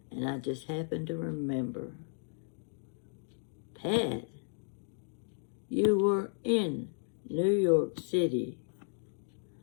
And I just happened to remember. Pat, you were in New York City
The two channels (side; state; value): right; silent; digital silence